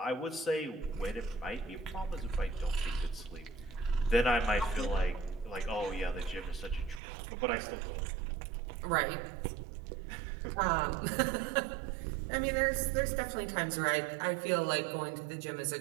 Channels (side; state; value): left; drops out; at 7.0 s